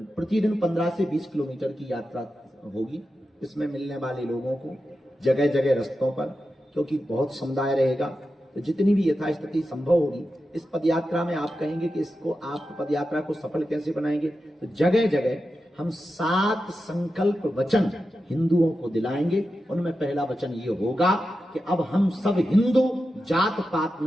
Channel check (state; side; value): normal; both; correlation 0.90